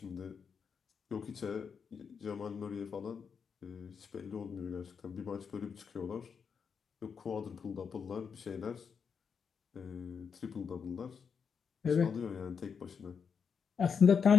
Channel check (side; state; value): right; quieter; 6.3 dB